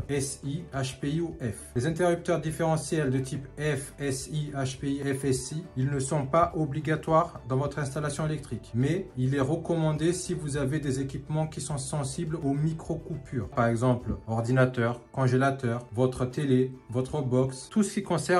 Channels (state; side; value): identical; both; correlation 1.00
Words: SI, HPI ou F. Les interrupteurs différentiels de type F, SI, HPI, FSI, ils ne sont pas obligatoires dans votre installation électrique. Mais il est recommandé si vous avez des équipements qui sont sensibles aux micro-coupures. Par exemple, ordinateur, congélateur, votre télé, votre box, tout ce qui